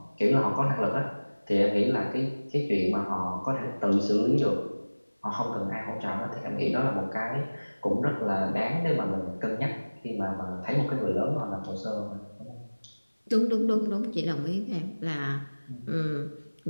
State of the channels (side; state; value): both; inverted; correlation -1.00